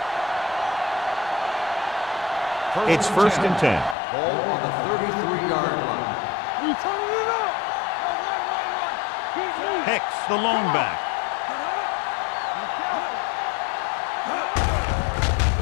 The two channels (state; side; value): drops out; right; at 4.0 s